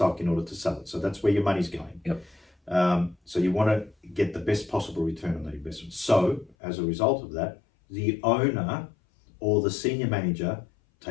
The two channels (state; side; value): drops out; right; at 6.6 s